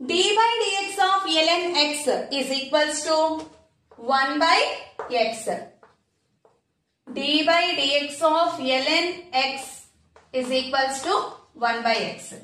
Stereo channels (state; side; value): identical; both; correlation 1.00